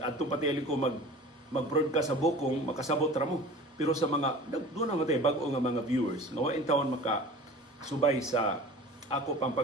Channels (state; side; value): normal; both; correlation 0.40